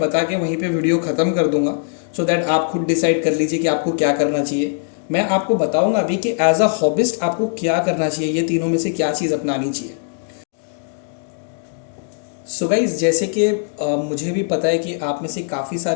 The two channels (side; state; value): right; silent; digital silence